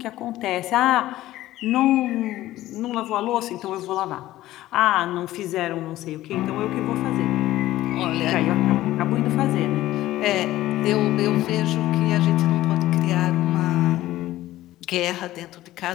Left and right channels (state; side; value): quieter; right; 15.4 dB